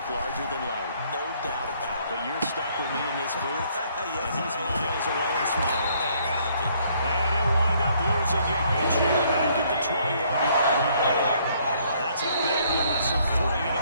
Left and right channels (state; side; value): inverted; both; correlation -0.65